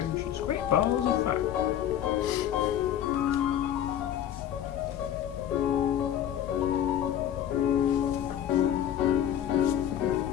great balls of fire.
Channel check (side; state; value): right; quieter; 10.5 dB